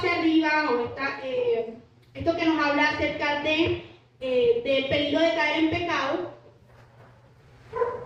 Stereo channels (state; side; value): identical; both; correlation 1.00